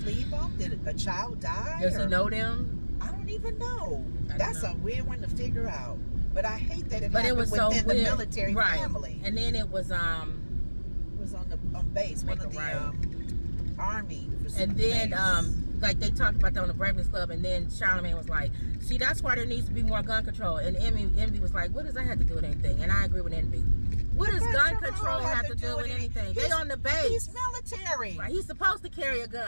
leave him? Did a child die? Does he Or- know them? I don't even know. I don't That's know. a weird one to figure out. But I hate that it But it happened was so within the weird. military Right. family. And then it was It was on base, one Make of it the right. army. and then base. like they talked about that on the Breakfast Club, and then Charlamagne was like, see, that's why there needs to be more gun control. And Envy was like, what does that have to do with anything? And I agree with Envy. What does gun control have to do with anything? They on the base. He's military. Right, he's supposed to carry a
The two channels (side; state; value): both; inverted; correlation -1.00